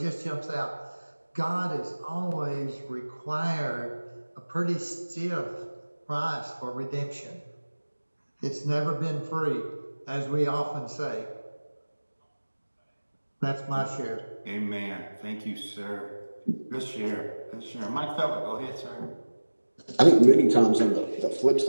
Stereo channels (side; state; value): both; inverted; correlation -1.00